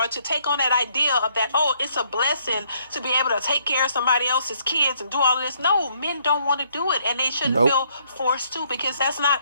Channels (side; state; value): both; inverted; correlation -0.68